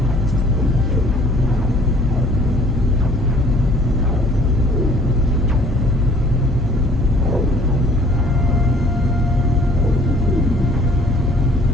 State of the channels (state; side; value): normal; both; correlation 0.56